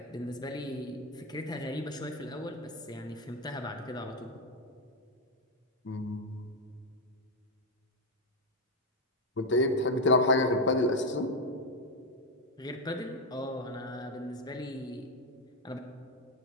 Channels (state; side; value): normal; both; correlation 0.07